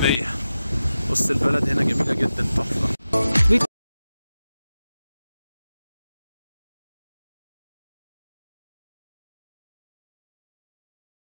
بص البلد هنا جميلة جدا، تحفة.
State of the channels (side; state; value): both; inverted; correlation -0.94